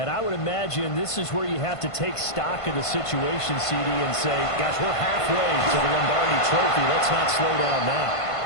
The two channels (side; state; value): right; late; 1.5 ms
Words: I would imagine this is where you have to take stock of the situation, CD, and say, gosh, we're halfway to the Lombardi Trophy. Let's not slow down now.